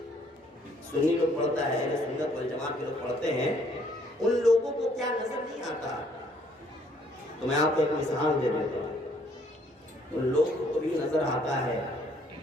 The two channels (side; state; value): both; normal; correlation 0.64